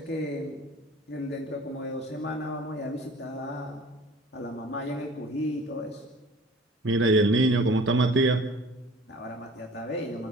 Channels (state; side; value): normal; both; correlation 0.46